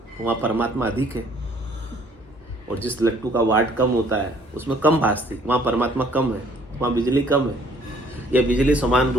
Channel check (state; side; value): normal; both; correlation 0.60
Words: वहाँ परमात्मा अधिक है। और जिस लट्टू का वाट कम होता है उसमें कम भासती, वहाँ परमात्मा कम है, वहाँ बिजली कम है। यह बिजली समान